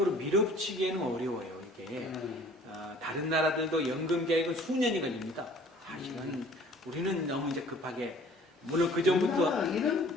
밀어붙이기에는 어려워요. 이게 다른 나라들도 연금 개혁은 수년이 걸립니다. 사실은 우리는 너무 이제 급하게 물론 그 전부터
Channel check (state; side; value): normal; both; correlation 0.52